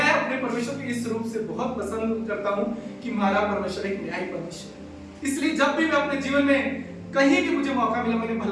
अपने परमेश्वर के इस रूप से बहुत पसंद करता हूँ कि हमारा परमेश्वर एक न्यायी परमेश्वर है। इसलिए जब भी मैं अपने जीवन में कहीं भी मुझे मौका मिला मैंने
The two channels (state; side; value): identical; both; correlation 1.00